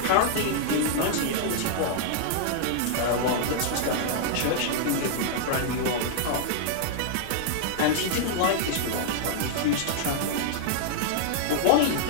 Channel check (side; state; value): both; different; correlation -0.01